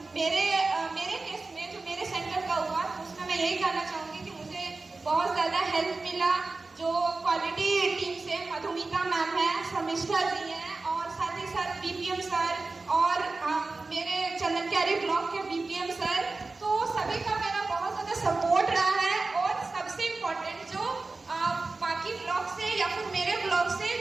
मेरे केस में जो मेरे सेंटर का हुआ, तो उसमें मैं यही कहना चाहूँगी कि मुझे बहुत ज़्यादा हेल्प मिला। जो क्वालिटी टीम से मधुमिता मैम है, समिष्ठा जी हैं, और साथ ही साथ बीपीएम सर और मेरे चंदनक्यारी ब्लॉक के बीपीएम सर, तो सभी का मेरा बहुत ज़्यादा सपोर्ट रहा है। और सबसे इम्पोर्टेंट जो बाकी ब्लॉक से या फिर मेरे ब्लॉक से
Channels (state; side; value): quieter; left; 3.6 dB